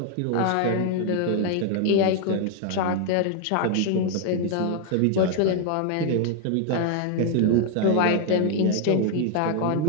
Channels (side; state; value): both; different; correlation 0.00